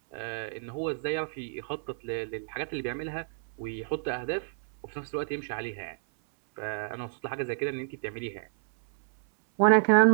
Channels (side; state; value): left; silent; 58 dB below the other